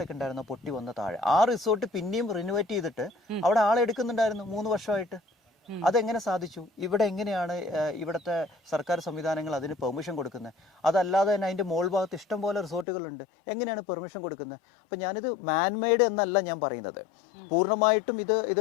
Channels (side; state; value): right; drops out; at 12.9 s